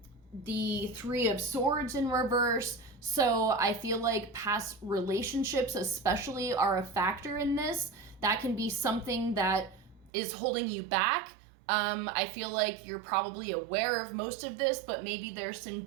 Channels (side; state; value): left; drops out; at 10.1 s